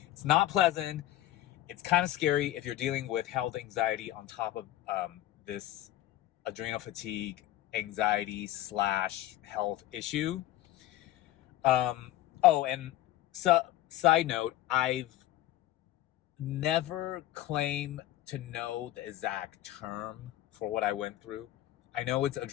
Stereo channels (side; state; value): right; quieter; 14.4 dB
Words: It's not pleasant. It's kind of scary if you're dealing with health anxiety on top of this adrenal fatigue anxiety / health issue. Oh, and side note, I've never claimed to know the exact term for what I went through. I know it's